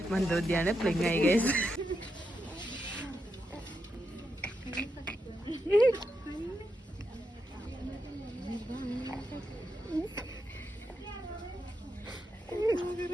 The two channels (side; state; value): both; normal; correlation 0.85